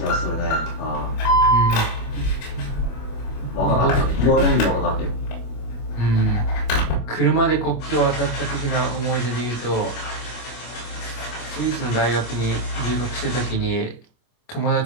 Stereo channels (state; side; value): late; right; 25 ms